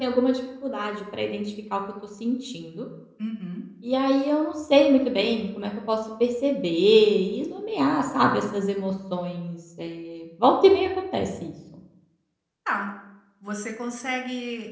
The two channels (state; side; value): identical; both; correlation 1.00